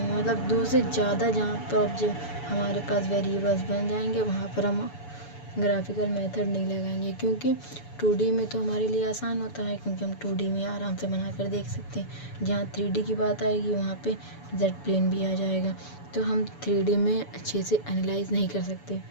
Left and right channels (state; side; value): late; right; 7.0 ms